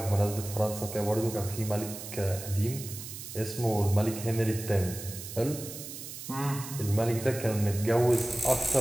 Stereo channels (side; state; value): right; noise; hiss, 10 dB below the sound